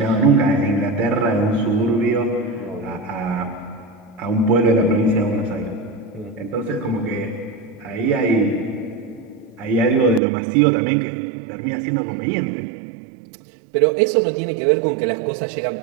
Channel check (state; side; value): drops out; left; at 10.2 s